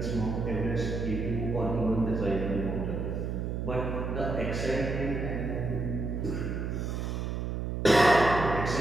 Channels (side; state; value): right; noise; hum, 2 dB below the sound